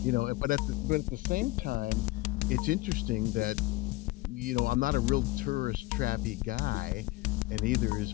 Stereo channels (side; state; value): right; quieter; 20.2 dB